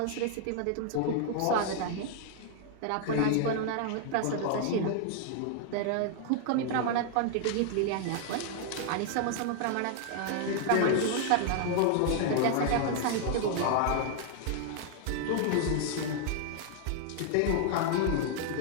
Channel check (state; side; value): different; both; correlation 0.00